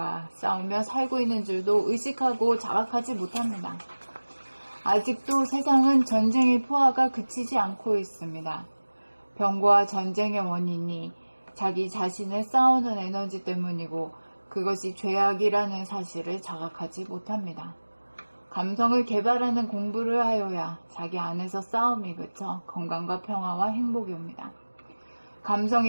싸우며 살고 있는 줄도 의식하고 자각하지 못합니다. 아직도 세상은 전쟁의 포화가 그치지 않고 있습니다. 병과 전쟁의 원인이 자기 자신을 싸우는 에너지 때문이고 그것이 죄악이라는 사실을 자각하지 못합니다. 감성을 개발하는 공부를 하여야 자기 안에서 싸움이 그쳐 건강과 평화와 행복이 옵니다.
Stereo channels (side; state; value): both; inverted; correlation -1.00